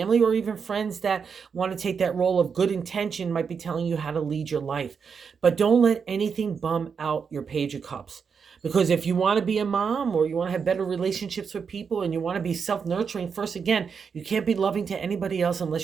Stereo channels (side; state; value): left; quieter; 6.1 dB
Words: or even friends that want to take that role of good intention might be telling you how to lead your life. But don't let anything bum out your Page of Cups. Because if you want to be a mom or you want to have better relationships with people and you want to be self-nurturing first, again, you can't be loving to anybody else